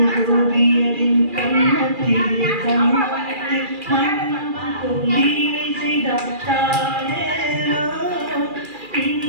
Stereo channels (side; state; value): left; late; 2.4 ms